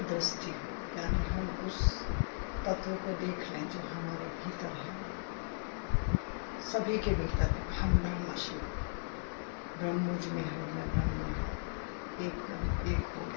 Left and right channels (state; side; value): silent; right; 53 dB below the other